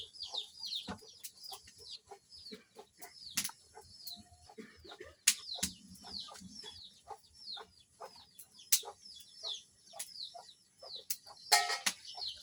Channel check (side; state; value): both; identical; correlation 1.00